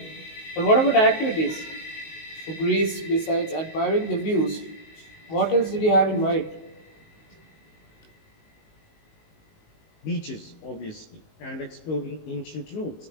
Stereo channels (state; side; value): late; right; 19 ms